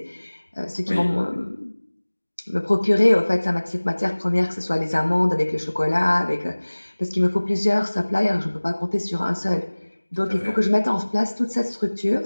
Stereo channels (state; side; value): inverted; both; correlation -1.00